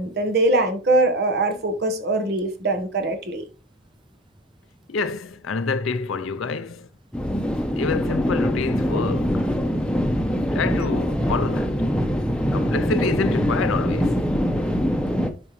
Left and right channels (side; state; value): both; normal; correlation 0.57